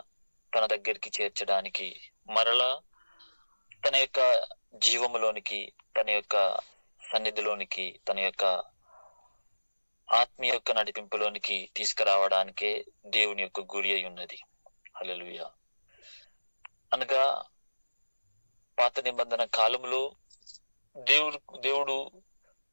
తన దగ్గరికి చేర్చడానికి, మరలా తన యొక్క జీవములోనికి, తన యొక్క సన్నిధిలోనికి, తన యొక్క ఆత్మీయ యొక్క నడిపింపులోనికి తీసుకురావడానికే దేవుని యొక్క గురి అయి ఉన్నది. హల్లెలూయా. అనగా పాత నిబంధన కాలంలో దేవుడు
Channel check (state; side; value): inverted; both; correlation -1.00